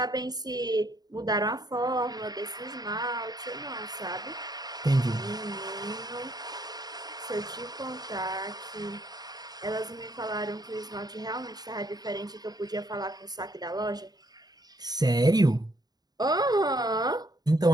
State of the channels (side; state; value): left; late; 0.19 ms